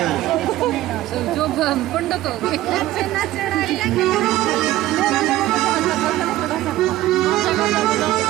जो पंडित हो गए।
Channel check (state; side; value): quieter; left; 15.3 dB